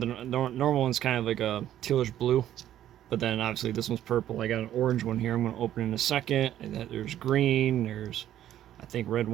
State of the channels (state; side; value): quieter; left; 11.9 dB